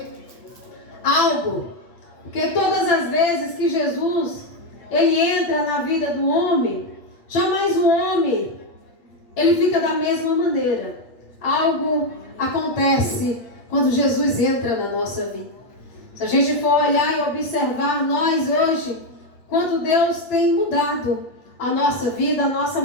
algo. Porque todas as vezes que Jesus, ele entra na vida do homem, jamais o homem, ele fica da mesma maneira. Algo acontece quando Jesus entra na nossa vida. Se a gente for olhar e observar nós hoje, quanto Deus tem mudado a nossa vida, a nossa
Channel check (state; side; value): late; right; 8.8 ms